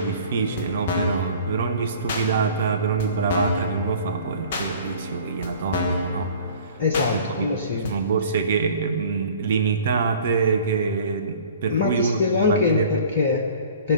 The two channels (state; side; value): inverted; both; correlation -0.47